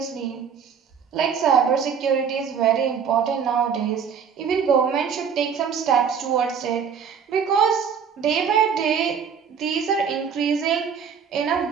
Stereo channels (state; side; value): quieter; left; 7.0 dB